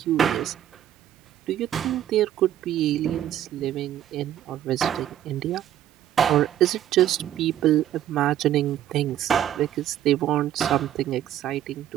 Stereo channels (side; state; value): left; quieter; 11.5 dB